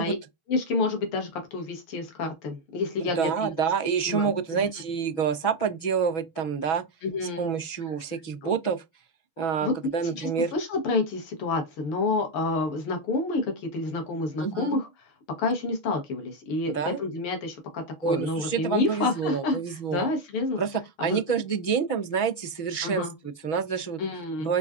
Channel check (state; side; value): late; right; 6.2 ms